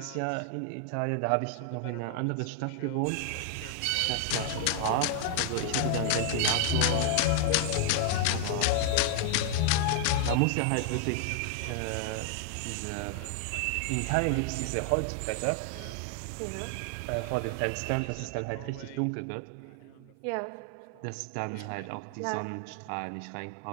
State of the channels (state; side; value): different; both; correlation 0.00